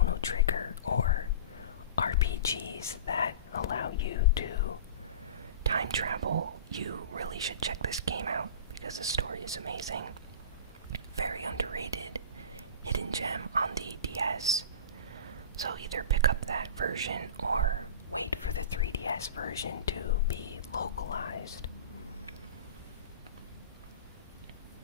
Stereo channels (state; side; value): inverted; both; correlation -0.33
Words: Trigger or RPGs that allow you to time travel, you really should check this game out because the story is amazing. Very underrated hidden gem on the DS. So either pick up that version or wait for the 3DS version to be localized.